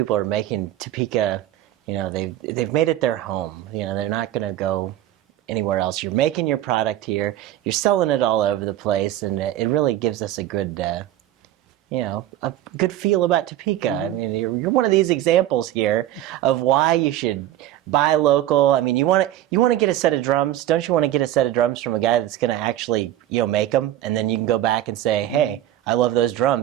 are making Topeka, they've made it their home. They're not going to go anywhere else. You're making your product here. You're selling it all over the place, and it really gives us a good feel about Topeka. I mean, you're one of these examples here of why you should buy local. I mean, you want to get a set of drums. Don't you want to get a set of drums from a guy that's going to actually, make them, and then you can go back and say, hey, I love those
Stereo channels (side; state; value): left; quieter; 13.1 dB